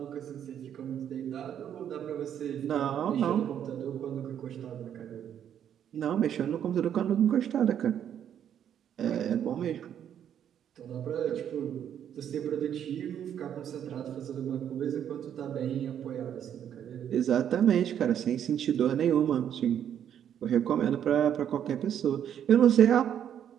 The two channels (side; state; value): left; quieter; 9.5 dB